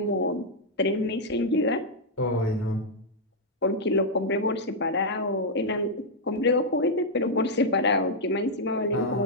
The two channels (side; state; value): both; normal; correlation -0.04